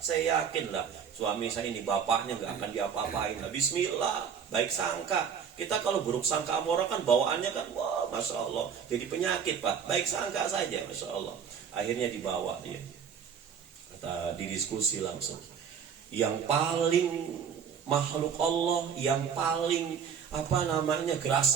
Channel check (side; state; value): left; quieter; 7.2 dB